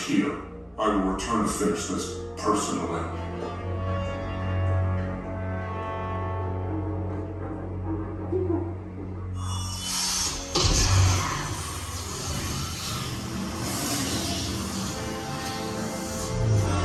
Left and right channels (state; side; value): identical; both; correlation 1.00